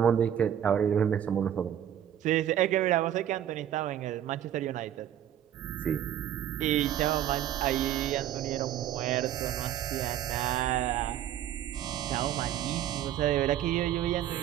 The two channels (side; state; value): left; quieter; 10.6 dB